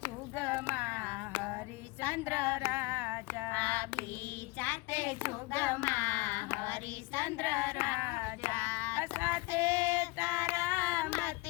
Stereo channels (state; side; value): quieter; right; 23.3 dB